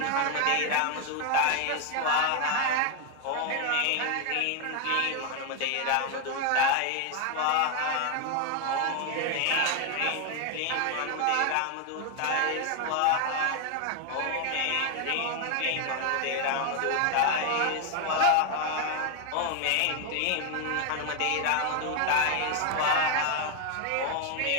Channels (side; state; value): both; different; correlation 0.01